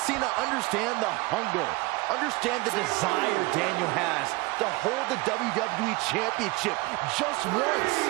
Cena understand the hunger, understand the desire Daniel has to hold the WWE Championship just once?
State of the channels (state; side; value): quieter; left; 22.8 dB